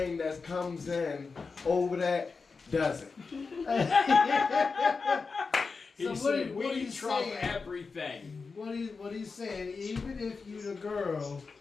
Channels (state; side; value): quieter; right; 4.6 dB